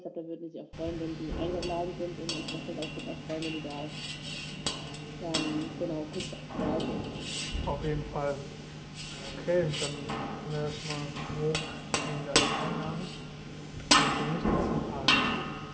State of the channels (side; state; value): both; identical; correlation 1.00